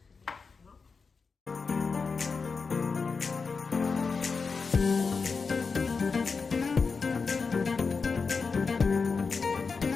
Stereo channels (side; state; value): right; quieter; 4.8 dB